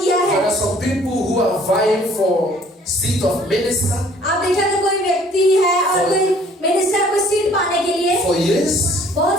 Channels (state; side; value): normal; both; correlation 0.56